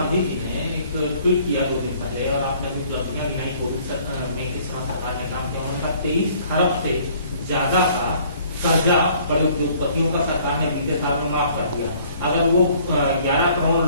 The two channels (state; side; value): inverted; both; correlation -0.58